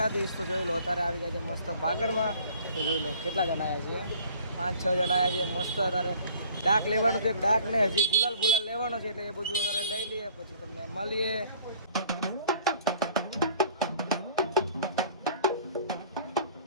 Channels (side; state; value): both; inverted; correlation -0.53